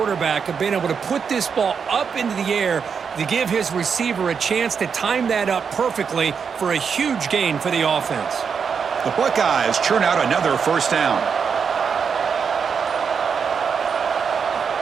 of being able to put this ball up into the air to give his receiver a chance to time that up perfectly for a huge gain for the offense. The Buckeyes churn out another first down.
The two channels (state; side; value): quieter; left; 6.3 dB